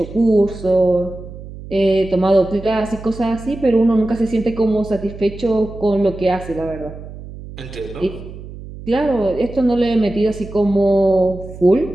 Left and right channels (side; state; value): right; noise; hum, 14 dB below the sound